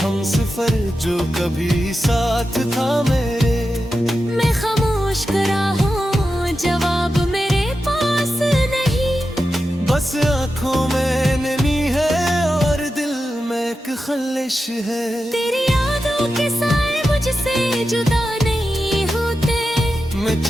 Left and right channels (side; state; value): both; normal; correlation 0.91